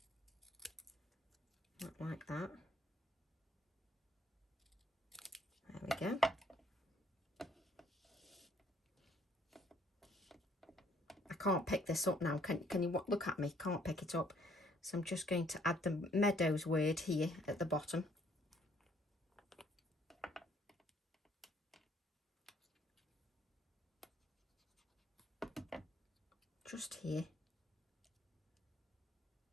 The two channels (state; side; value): normal; both; correlation 0.64